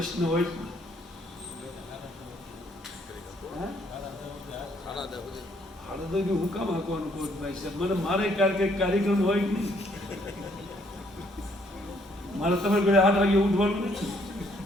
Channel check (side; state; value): both; normal; correlation 0.67